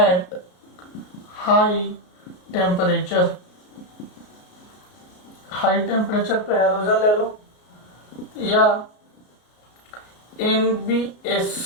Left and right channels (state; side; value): late; right; 33 ms